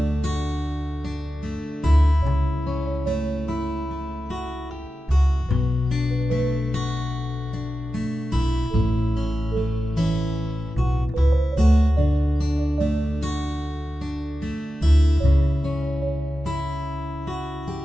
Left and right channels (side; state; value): both; normal; correlation 0.92